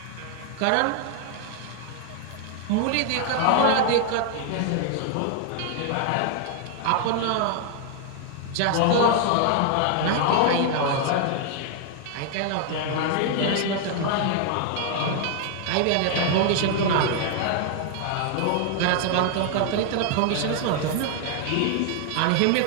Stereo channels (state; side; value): different; both; correlation 0.00